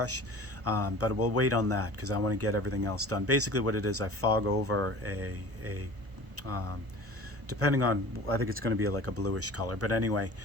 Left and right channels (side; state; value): left; late; 1.0 ms